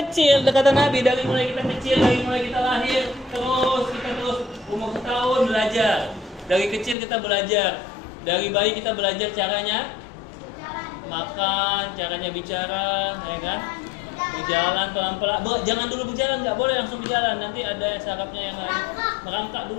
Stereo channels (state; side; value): drops out; right; at 7.0 s